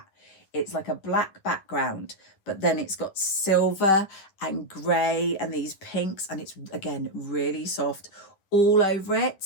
It's like a black background, but then it's got silver and grey and these pinks, and it's, again, really soft all over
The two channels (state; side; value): late; right; 10 ms